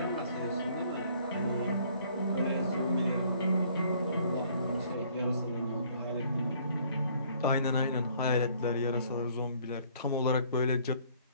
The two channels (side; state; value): both; inverted; correlation -0.60